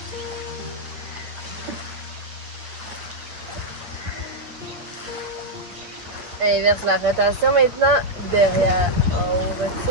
Inverse la rotation maintenant, derrière, en haut,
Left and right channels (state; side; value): late; left; 9.0 ms